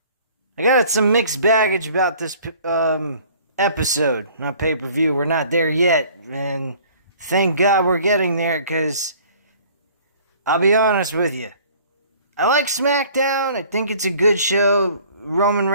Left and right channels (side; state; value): both; inverted; correlation -0.52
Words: got some mixed baggage about this episode, not pay-per-view. We're not there yet, and thank God we're getting there, because I'll be honest with you. I like SmackDown. I think it's a good show. Roman